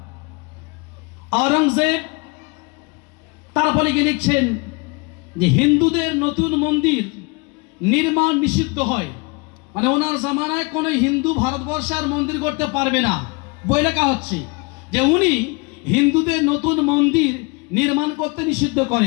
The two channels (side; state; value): right; quieter; 28.7 dB